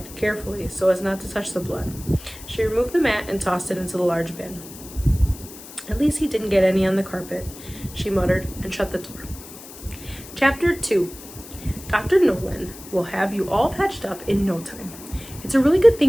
carefully so as not to touch the blood. She removed the mat and tossed it into the large bin. "At least he didn't get any on the carpet," she muttered and shut the door. Chapter 2. Dr. Nolan will have you all patched up in no time. "It's a really good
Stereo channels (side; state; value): left; noise; hiss, 16 dB below the sound